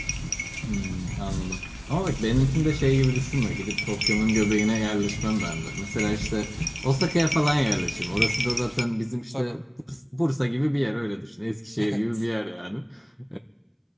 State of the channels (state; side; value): identical; both; correlation 1.00